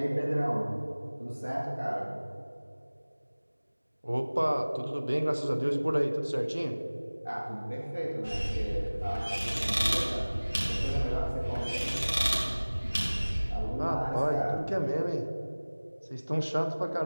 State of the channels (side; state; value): both; inverted; correlation -1.00